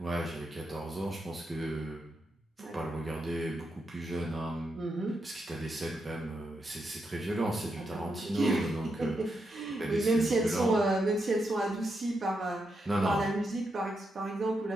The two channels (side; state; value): both; normal; correlation 0.84